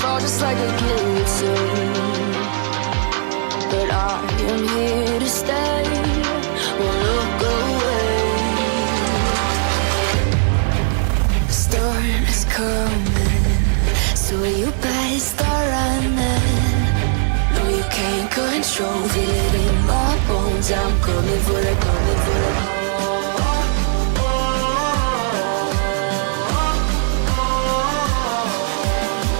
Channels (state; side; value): silent; left; digital silence